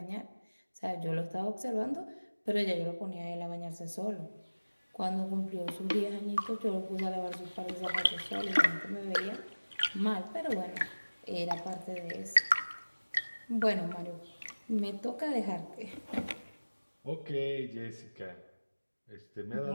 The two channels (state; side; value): inverted; both; correlation -1.00